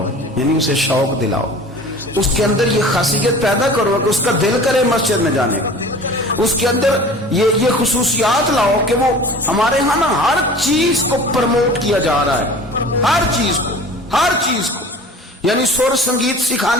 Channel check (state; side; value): normal; both; correlation 0.42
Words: یعنی اسے شوق دلاؤ، اس کے اندر یہ خاصیت پیدا کرو کہ اس کا دل کرے مسجد میں جانے کا، اس کے اندر یہ خصوصیات لاؤ کہ وہ ہمارے ہاں نا ہر چیز کو پروموٹ کیا جا رہا ہے، ہر چیز کو یعنی سر سنگیت